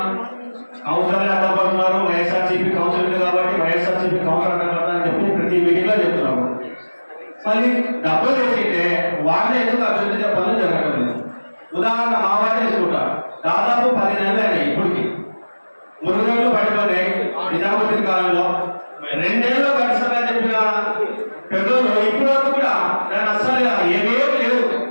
కౌన్సిలర్లు అడ్డపడుతున్నారు, వైఎస్ఆర్సీపీ కౌన్సిలర్ కాబట్టి వైఎస్ఆర్సీపీ కౌన్సిలర్ అడ్డపడతారని చెప్పి ప్రతి మీటింగ్ లో చెప్తున్నారు. మళ్ళీ డబ్బులు తెచ్చితే వాళ్ళే ఎందుకు అభివృద్ధి చెప్పాలని జరగడం లేదు. ఉదాహరణ మా వాడే తీసుకుంటారు, దాదాపు 10 నెలలు అయినాయి ఇప్పటికి, మురుగులు పడిపోయినాయి నిజాముద్దీన్ కాలంలో 2 నెలల్లో కట్టిస్తారని చెప్పిన పెద్దలు ఇప్పుడు వరకు కూడా దాన్ని అస్సలు ఏమేమి లేవు.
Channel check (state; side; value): inverted; both; correlation -1.00